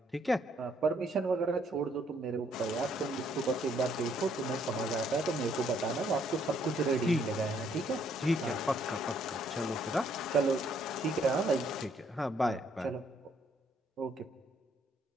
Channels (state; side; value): normal; both; correlation 0.68